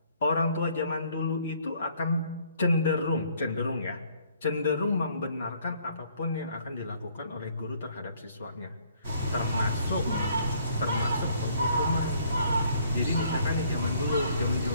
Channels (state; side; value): inverted; both; correlation -0.63